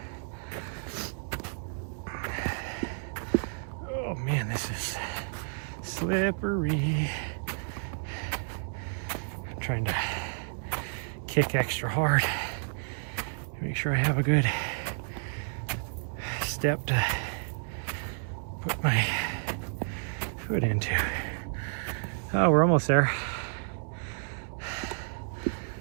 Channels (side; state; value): left; silent; digital silence